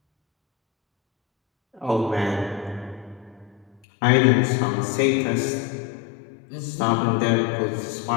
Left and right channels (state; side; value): drops out; right; at 3.8 s